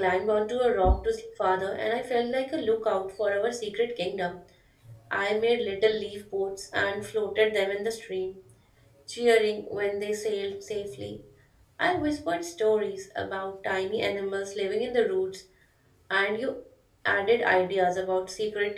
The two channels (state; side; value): identical; both; correlation 1.00